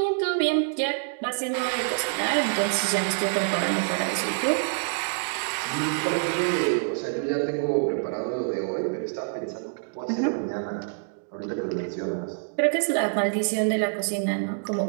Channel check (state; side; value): silent; left; digital silence